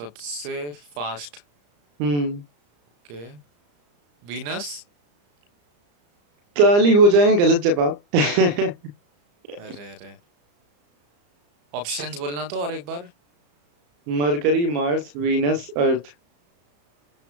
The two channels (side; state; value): left; late; 34 ms